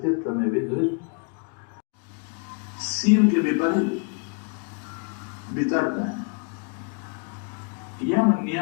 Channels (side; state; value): right; quieter; 37.4 dB